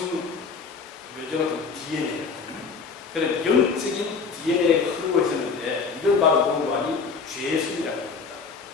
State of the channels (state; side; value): quieter; right; 5.1 dB